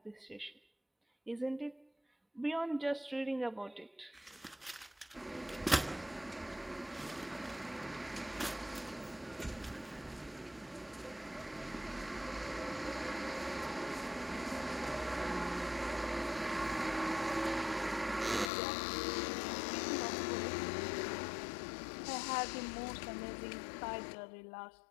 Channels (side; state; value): right; drops out; at 18.5 s